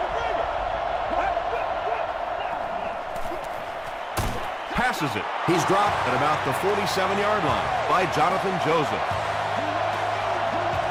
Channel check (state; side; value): identical; both; correlation 1.00